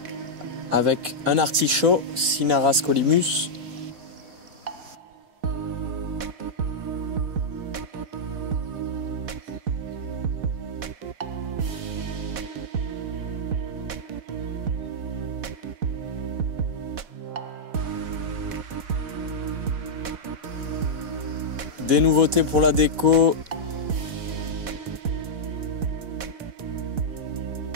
avec un artichaut, Cinara Scolymus. Des nouveautés pour la déco.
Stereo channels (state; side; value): late; left; 4.1 ms